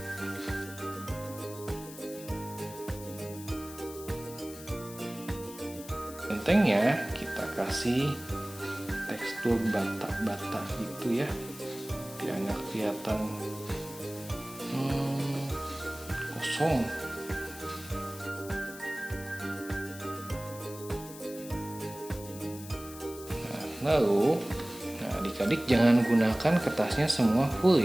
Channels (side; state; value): left; noise; hiss, 15 dB below the sound